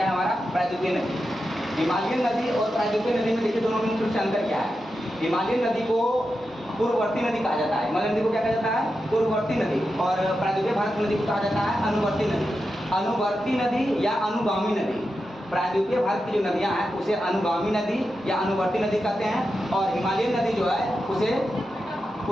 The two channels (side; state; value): both; normal; correlation 0.89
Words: है हमारा? प्रायद्वीपीय नदी। हिमालयन नदी और प्रायद्वीपीय नदी में देखिए दोनों में मुख्य अंतर क्या है। हिमालयन नदी को पूर्ववर्ती नदी कहा जाता है। हिमालयन नदी को क्या कहा जाता है? पूर्ववर्ती नदी। और प्रायद्वीपीय भारत नदी को कहा जाता है अनुवर्ती नदी। अनुवर्ती नदी या अनुगामी नदी। प्रायद्वीपीय भारत की जो नदियां हैं उसे अनुगामी नदी या अनुवर्ती नदी कहते हैं, और हिमालयन नदी जो है उसे